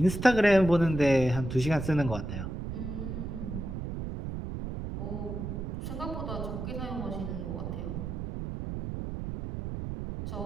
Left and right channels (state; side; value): noise; right; rumble, 5 dB below the sound